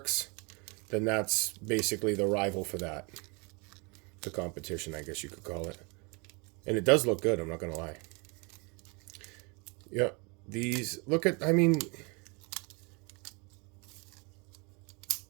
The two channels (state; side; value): quieter; left; 31.1 dB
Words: then that's basically the rival for that. The competition, I guess you could call it. And it does look good, I'm not going to lie. Yep. These, look at, I mean,